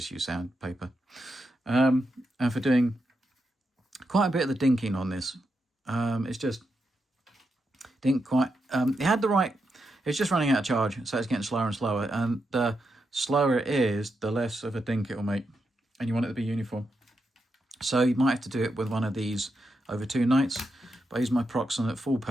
use sandpaper. And for doing quite a bit of the dinking on this. It's just didn't quite... it had the right... It's just running out of charge, so it's getting slower and slower. And the slower it is, the less of a dink it will make. And you want it to be uniform. So you might have to do it with one of these over 2 nights. But I use my Proxon at full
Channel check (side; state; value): both; normal; correlation 0.85